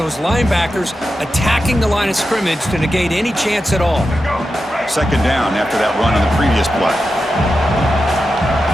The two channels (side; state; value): both; normal; correlation 0.90